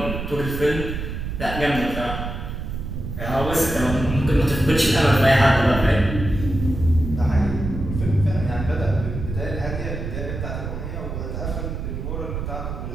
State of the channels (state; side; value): noise; right; rumble, 5 dB below the sound